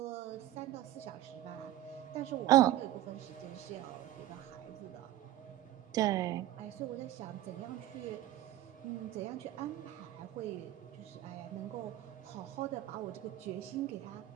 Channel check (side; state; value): left; quieter; 14.1 dB